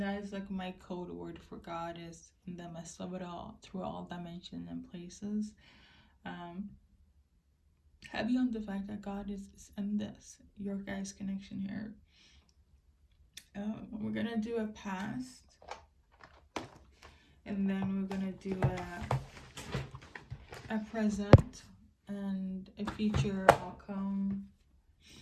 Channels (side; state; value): both; identical; correlation 1.00